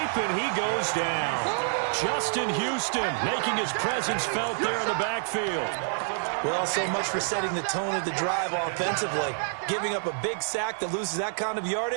and he goes down. Justin Houston making his presence felt there in the backfield. Well, so much for setting the tone of the drive offensively. Giving up a big sack that loses that kind of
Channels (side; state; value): left; silent; digital silence